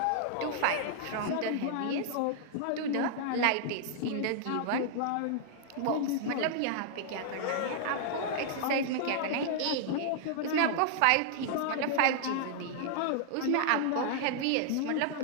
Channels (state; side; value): different; both; correlation -0.01